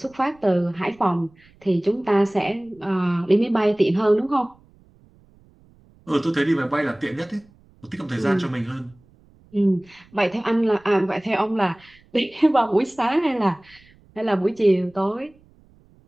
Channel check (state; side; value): noise; right; rumble, 29 dB below the sound